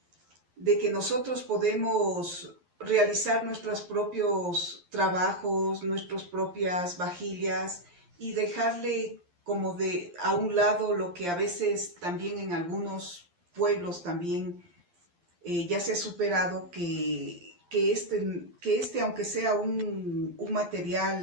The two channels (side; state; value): left; late; 11 ms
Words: nosotros podemos realizar nuestros propios trabajos, nuestras propias vajillas, y dejarle como a un lado lo que a veces también en algunos pueblos también ya se ha superado, que aunque sea un